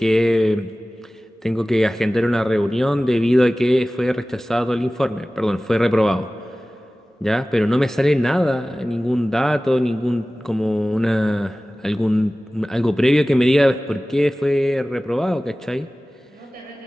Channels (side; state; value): both; normal; correlation 0.97